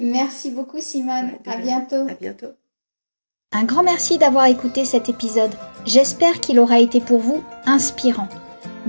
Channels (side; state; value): both; inverted; correlation -1.00